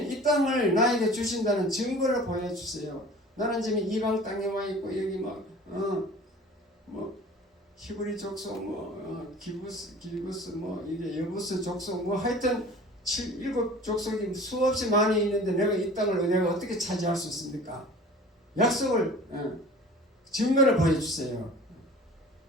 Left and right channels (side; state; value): both; normal; correlation 0.43